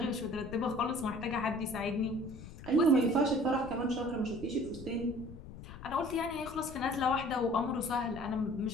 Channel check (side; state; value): left; noise; rumble, 14 dB below the sound